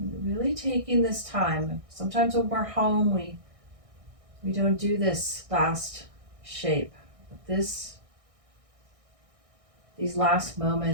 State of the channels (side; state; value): left; late; 1.6 ms